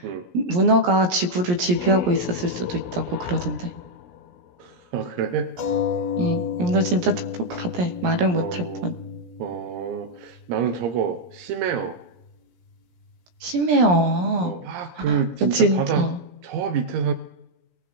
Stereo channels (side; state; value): left; late; 17 ms